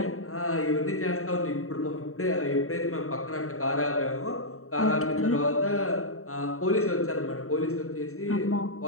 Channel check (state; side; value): late; right; 0.63 ms